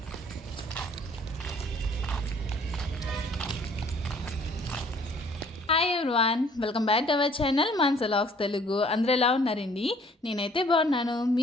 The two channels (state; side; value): normal; both; correlation 0.58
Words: hi everyone, welcome back to our channel Manasa vlogs Telugu. అందరూ ఎలా ఉన్నారండి? నేనైతే బాగున్నాను.